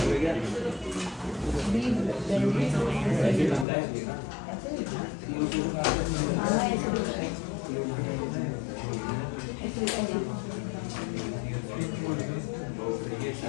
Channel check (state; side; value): drops out; right; at 3.7 s